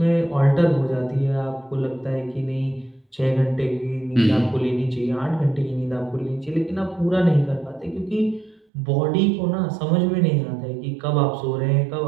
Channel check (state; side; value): drops out; left; at 8.7 s